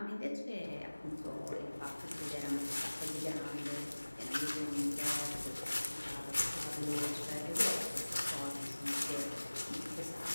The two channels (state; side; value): inverted; both; correlation -1.00